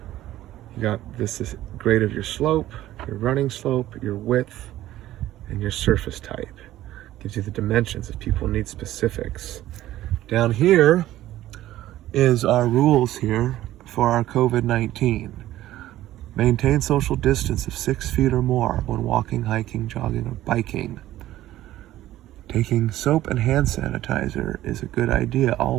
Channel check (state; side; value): quieter; left; 14.3 dB